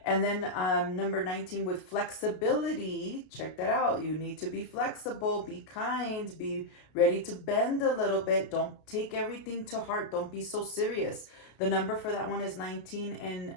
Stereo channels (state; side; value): late; right; 33 ms